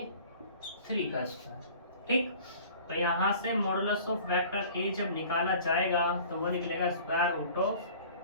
का स्क्वायर। ठीक, तो यहाँ से मॉडुलस ऑफ वेक्टर ए जब निकाला जाएगा तो वो निकलेगा स्क्वायर रूट ऑफ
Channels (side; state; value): both; inverted; correlation -0.47